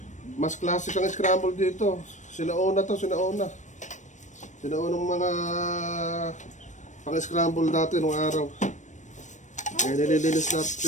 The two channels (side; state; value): right; late; 0.35 ms